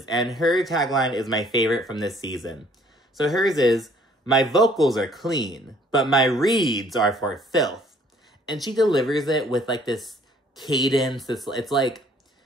and her tagline is my favorite from this season. So hers is, "My vocals are clean, but my reads are for filth." And she delivers it with, like, this cadence. It's like,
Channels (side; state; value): both; normal; correlation 0.59